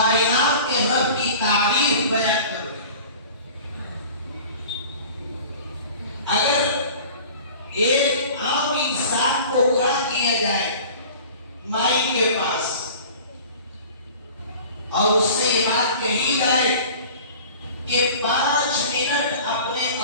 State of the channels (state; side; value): inverted; both; correlation -0.42